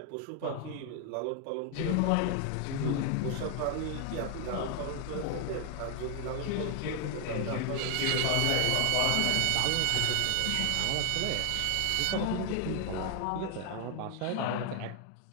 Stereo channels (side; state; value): both; different; correlation 0.00